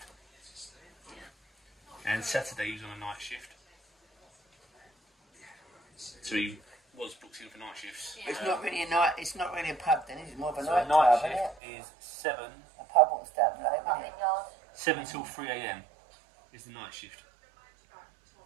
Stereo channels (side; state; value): left; drops out; at 11.6 s